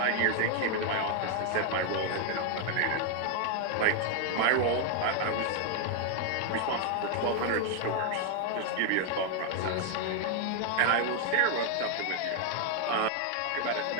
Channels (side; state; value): both; different; correlation 0.00